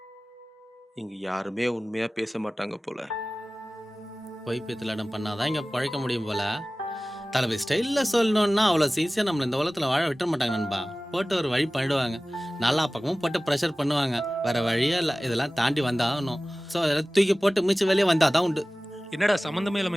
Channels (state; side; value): normal; both; correlation 0.97